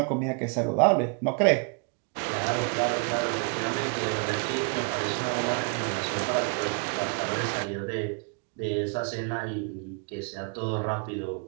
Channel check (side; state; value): left; quieter; 36.1 dB